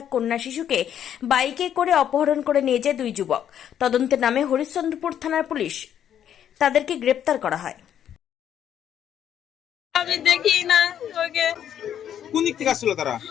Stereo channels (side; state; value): right; quieter; 9.8 dB